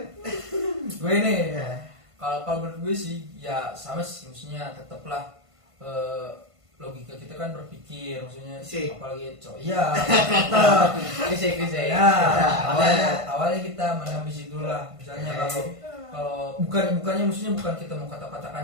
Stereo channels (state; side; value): late; left; 1.5 ms